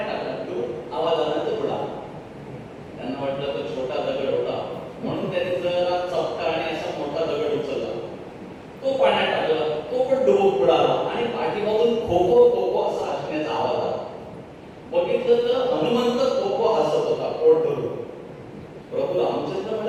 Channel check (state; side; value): identical; both; correlation 1.00